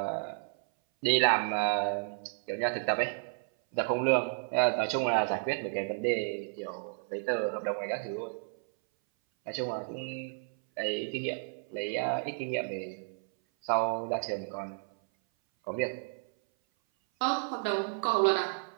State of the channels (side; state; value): left; silent; 57 dB below the other